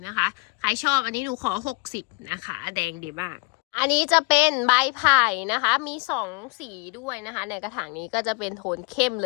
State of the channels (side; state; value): right; quieter; 30.4 dB